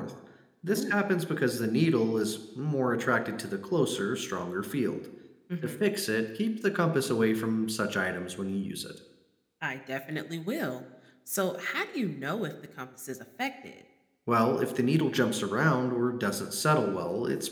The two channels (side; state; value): both; identical; correlation 1.00